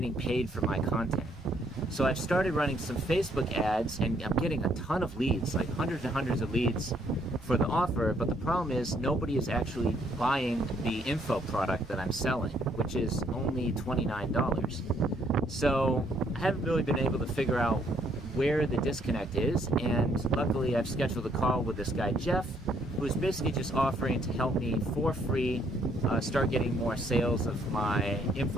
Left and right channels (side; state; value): both; normal; correlation 0.68